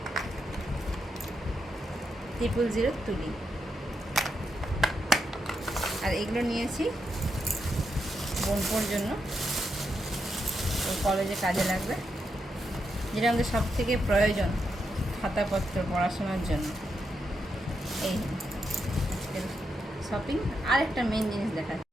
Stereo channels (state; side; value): normal; both; correlation 0.83